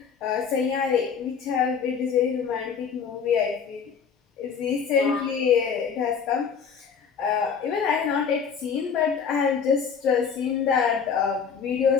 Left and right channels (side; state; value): right; quieter; 6.6 dB